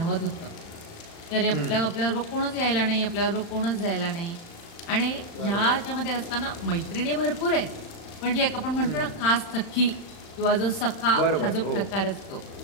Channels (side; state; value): right; late; 35 ms